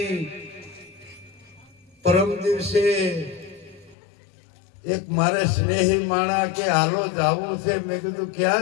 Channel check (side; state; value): right; drops out; at 4.0 s